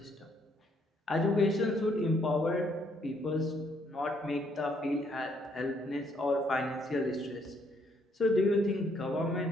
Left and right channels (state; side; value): normal; both; correlation 0.70